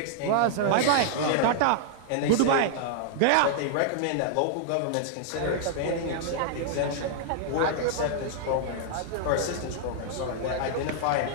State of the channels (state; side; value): different; both; correlation -0.01